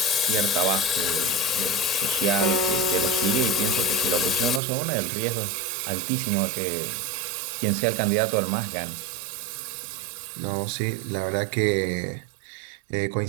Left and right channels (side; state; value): left; drops out; at 4.6 s